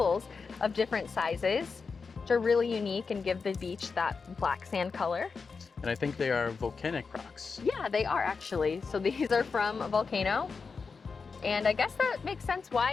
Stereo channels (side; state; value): right; quieter; 5.0 dB